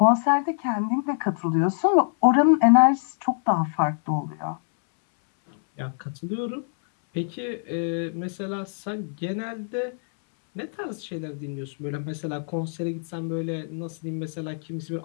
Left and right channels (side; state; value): right; silent; 62 dB below the other